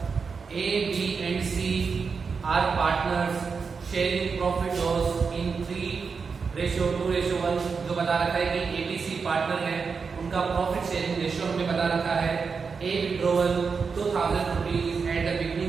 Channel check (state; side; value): quieter; left; 5.3 dB